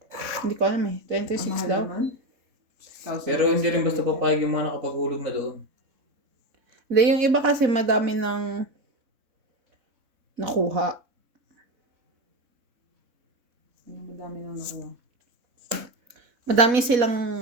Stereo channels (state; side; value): late; left; 4.1 ms